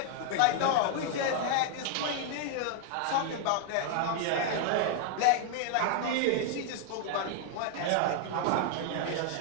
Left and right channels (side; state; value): both; different; correlation 0.00